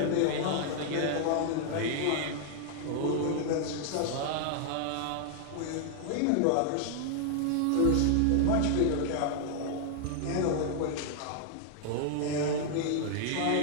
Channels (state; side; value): different; both; correlation -0.01